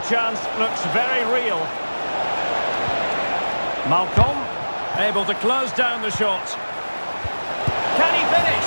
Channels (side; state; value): both; inverted; correlation -1.00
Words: chance looks very real. Malcolm, able to close down the shot. Can he